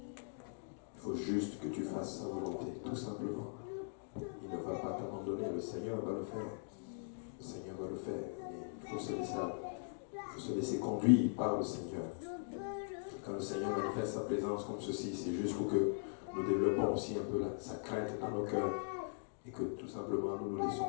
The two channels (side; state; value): right; silent; digital silence